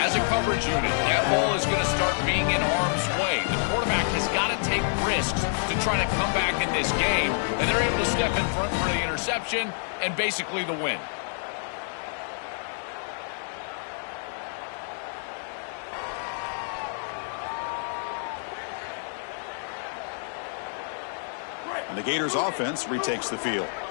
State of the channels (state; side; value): silent; right; 60 dB below the other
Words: as a coverage unit, that ball is going to start being in harm's way. The quarterback has got to take risks to try to come back in this game, and they're able to step in front for the interception and basically the win. And the Gators offense retakes the field.